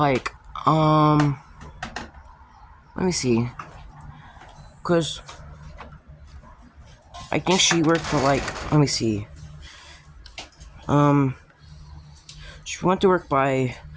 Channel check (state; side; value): identical; both; correlation 1.00